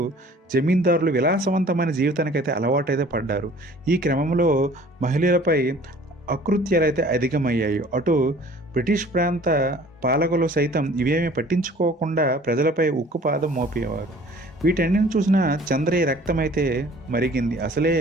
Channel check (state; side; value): normal; both; correlation 0.50